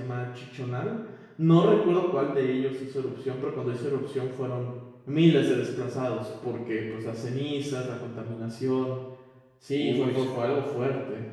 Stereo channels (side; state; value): both; identical; correlation 1.00